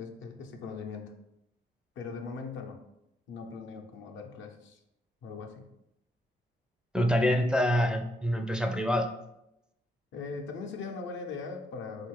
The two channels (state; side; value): normal; both; correlation 0.77